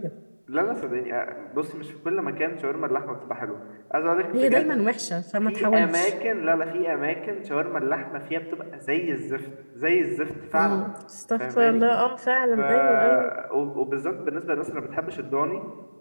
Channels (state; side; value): inverted; both; correlation -1.00